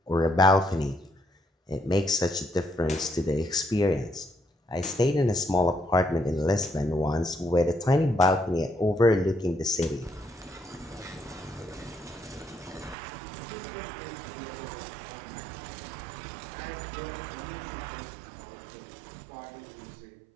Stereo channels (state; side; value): drops out; left; at 13.0 s